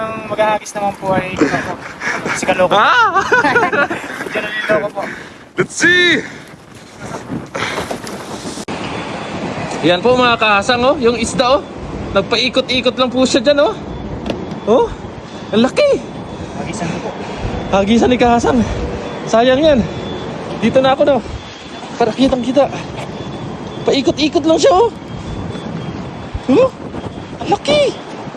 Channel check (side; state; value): both; identical; correlation 1.00